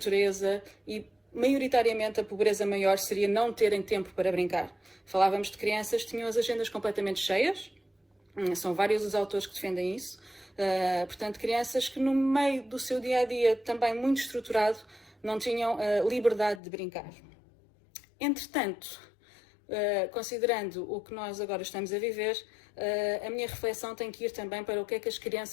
e maioritariamente a pobreza maior seria não terem tempo para brincar. Falávamos de crianças que tinham as agendas completamente cheias, são vários os autores que defendem isso, portanto crianças que no meio do seu dia-a-dia também muito estruturado não tinham liberdade de brincar. Entretanto, considerando o que nós agora estamos a viver, a minha reflexão tem que ir também para o que é que as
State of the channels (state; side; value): drops out; right; at 16.6 s